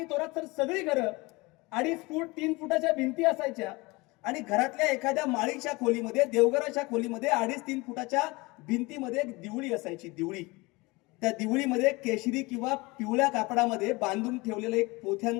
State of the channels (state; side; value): quieter; right; 24.0 dB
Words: थोरात तर सगळी घरं 2.5 फूट 3 फुटाच्या भिंती असायच्या. आणि घरातल्या एखाद्या माळीच्या खोलीमध्ये, देवघराच्या खोलीमध्ये 2.5-3 फुटाच्या भिंतीमध्ये एक दिवळी असायची. दिवळी, त्या दिवळीमध्ये केशरी किंवा पिवळ्या कापडामध्ये बांधून ठेवलेला एक